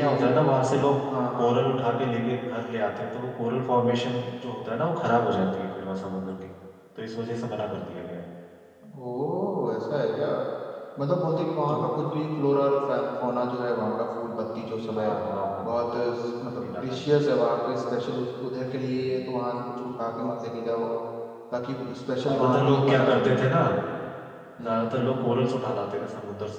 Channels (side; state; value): both; identical; correlation 1.00